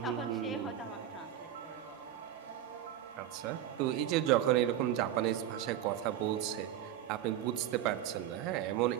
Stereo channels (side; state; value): left; quieter; 11.3 dB